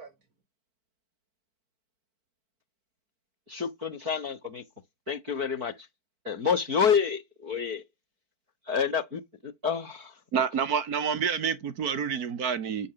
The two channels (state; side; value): late; left; 4.5 ms